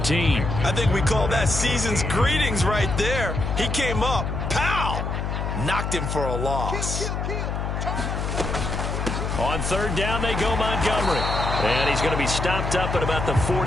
I think we call that season's greetings right there. He came up, pow, knocked him for a loss. On 3rd down, they go Montgomery. And he's going to be stopped up at about the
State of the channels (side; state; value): left; noise; hum, 2 dB below the sound